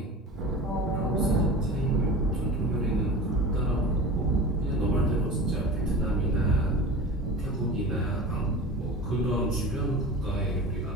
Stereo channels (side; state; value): both; normal; correlation 0.33